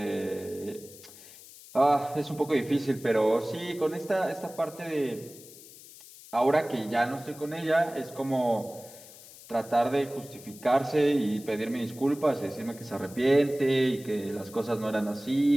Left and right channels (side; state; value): left; noise; hiss, 19 dB below the sound